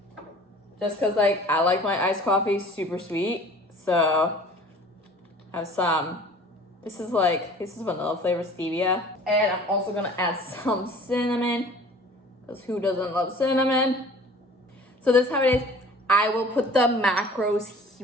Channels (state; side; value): normal; both; correlation 0.47